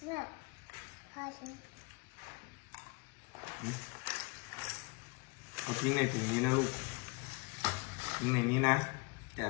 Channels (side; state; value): right; quieter; 29.9 dB